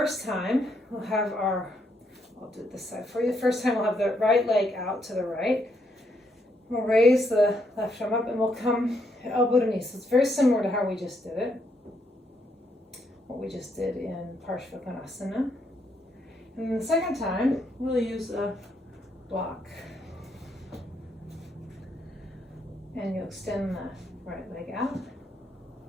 time we'll have I'll do it this side for you. The first time we'll have the right leg out to the right. We'll raise the left arm up and we'll come elbow to knee. So it's very similar to how we just did it. What we just did in Parshvakonasana. And then the second time, we'll use a block. And you'll extend the right leg out.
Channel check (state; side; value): normal; both; correlation 0.75